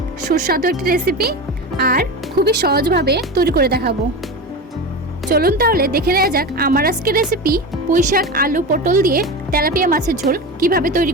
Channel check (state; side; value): normal; both; correlation 0.24